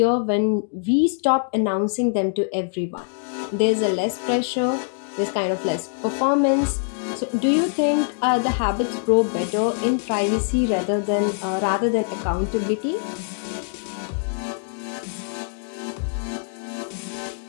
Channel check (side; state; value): right; silent; digital silence